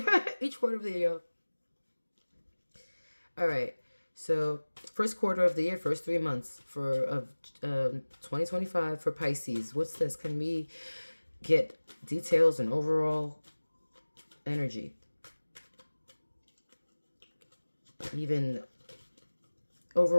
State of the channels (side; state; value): both; inverted; correlation -1.00